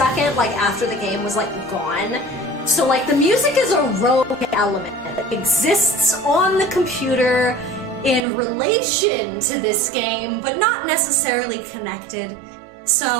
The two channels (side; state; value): left; drops out; at 8.2 s